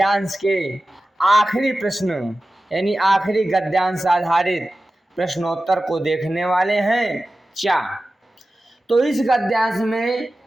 के आखिरी प्रश्न यानी आखिरी गद्यांश आधारित प्रश्नोत्तर को देखने वाले हैं। तो इस गद्यांश में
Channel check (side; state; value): both; normal; correlation 0.94